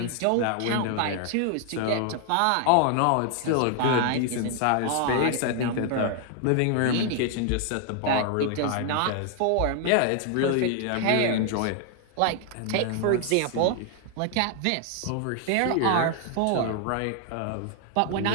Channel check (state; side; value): different; both; correlation 0.00